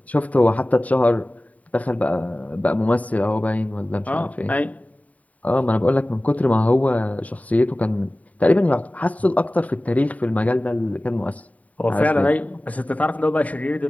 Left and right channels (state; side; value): late; right; 0.070 ms